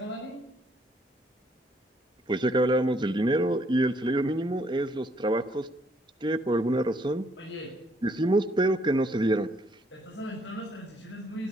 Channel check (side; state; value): both; normal; correlation 0.68